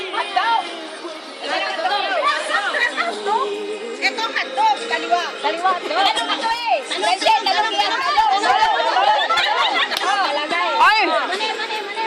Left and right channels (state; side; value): identical; both; correlation 1.00